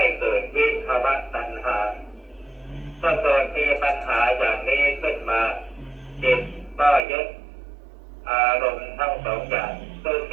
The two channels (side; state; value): left; drops out; at 7.1 s